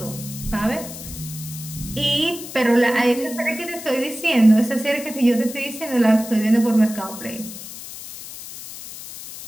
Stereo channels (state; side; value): noise; left; hiss, 12 dB below the sound